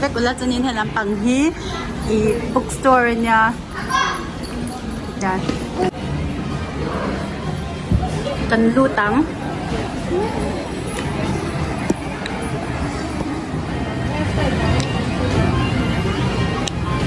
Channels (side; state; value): both; identical; correlation 1.00